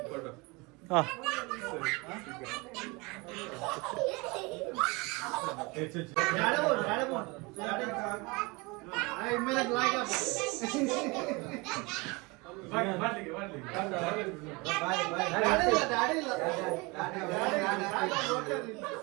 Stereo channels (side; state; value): left; quieter; 26.3 dB